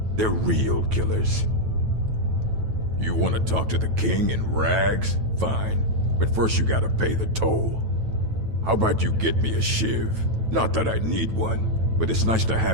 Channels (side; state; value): left; late; 9.1 ms